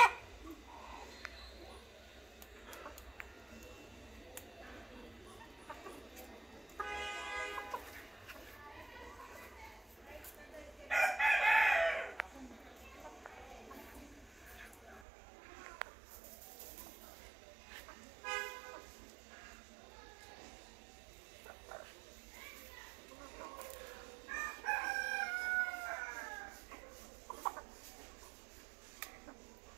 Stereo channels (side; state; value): left; drops out; at 15.0 s